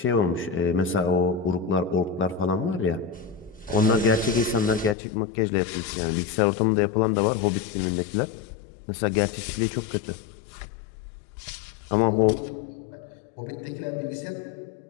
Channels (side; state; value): right; drops out; at 5.0 s